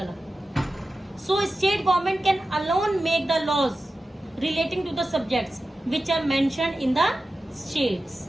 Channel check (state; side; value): normal; both; correlation 0.93